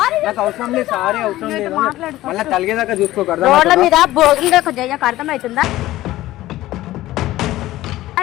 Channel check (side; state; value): right; quieter; 16.0 dB